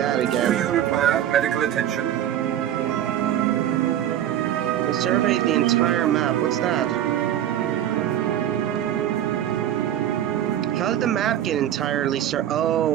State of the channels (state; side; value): quieter; left; 11.2 dB